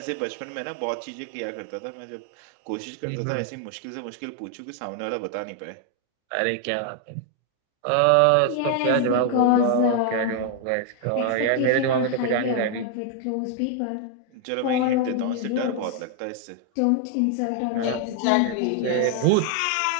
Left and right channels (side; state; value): both; different; correlation 0.00